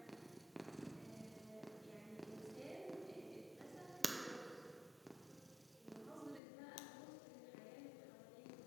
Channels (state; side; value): drops out; right; at 6.4 s